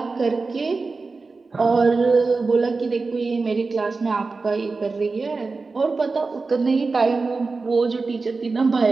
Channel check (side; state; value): left; quieter; 4.0 dB